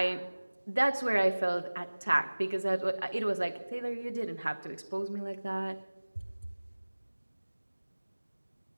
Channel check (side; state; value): both; inverted; correlation -1.00